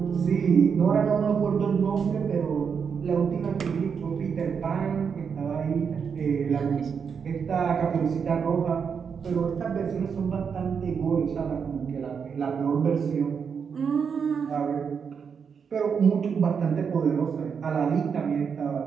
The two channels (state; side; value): quieter; left; 6.5 dB